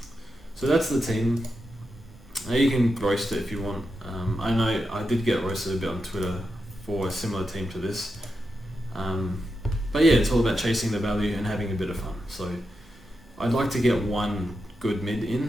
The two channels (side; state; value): both; normal; correlation 0.88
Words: So that's the team. You can roast it if you want. I know I did get roasted a bit on Twitter for a similar team to this. But yeah, it's all about chasing the value and having a bit of fun. So I'd like to get one good mid